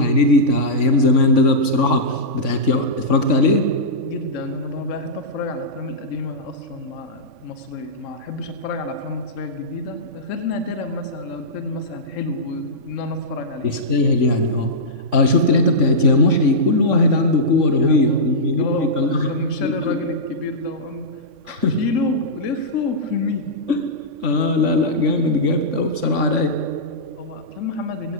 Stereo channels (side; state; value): left; late; 3.5 ms